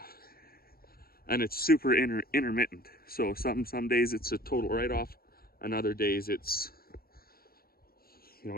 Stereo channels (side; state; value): right; late; 0.44 ms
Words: it's super intermittent. So some days it's a total write-off, and other days it's,